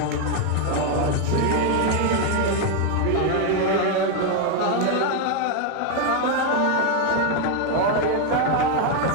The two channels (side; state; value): both; different; correlation 0.01